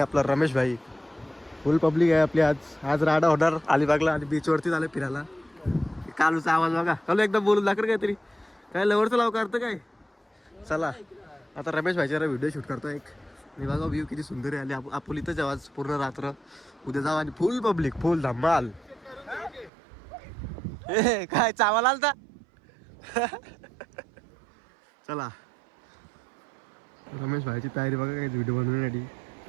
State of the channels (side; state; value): left; drops out; at 19.7 s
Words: रमेश भाई फुल पब्लिक आहे आपली. आज राडा होणार अलिबागला आणि बीचवरती झालं फिरायला. कालूचा आवाज बघा. कालू एकदम बोलून दाखर काहीतरी काय लवरचं लाव करतं काय. चला आता रमेश भाईच्या व्हिडिओ शूट करतो एक. आणि बघा व्ह्यू किती सुंदर आहे. आणि आपण इथंच आवाज पूर्ण रात्र उद्या जाऊ आणि फुल पब्लिक फुल धमाल. ए काय चावल आलता. चला रमेश भाईची तयारी बघा काय व्हिडिओ बनवण्यासाठी.